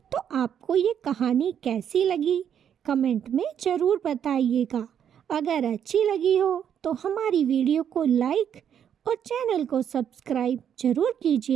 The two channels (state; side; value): quieter; left; 8.9 dB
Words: तो आपको ये कहानी कैसी लगी कमेंट में ज़रूर बताइएगा। अगर अच्छी लगी हो तो हमारी वीडियो को लाइक और चैनल को सब्सक्राइब जरूर